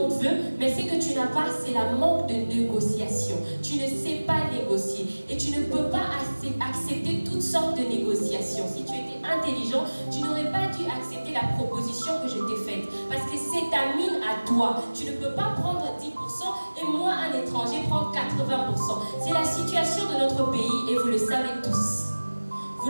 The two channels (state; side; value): inverted; both; correlation -1.00